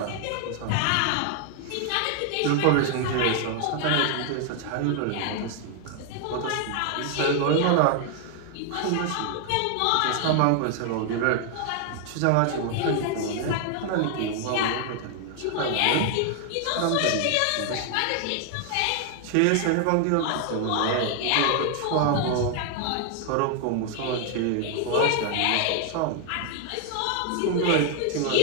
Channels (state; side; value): different; both; correlation 0.00